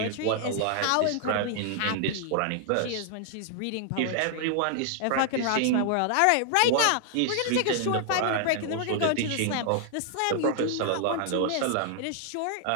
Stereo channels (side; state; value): both; different; correlation -0.01